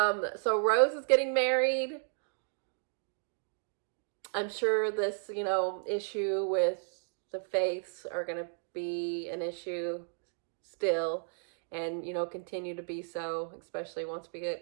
Rose is getting married. I'm sure this, issue with the faiths are going to be an issue still, and, continue to be so, especially once we get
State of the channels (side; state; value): left; silent; 55 dB below the other